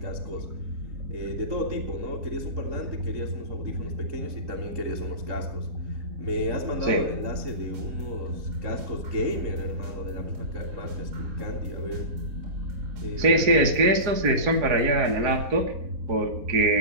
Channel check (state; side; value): late; left; 4.7 ms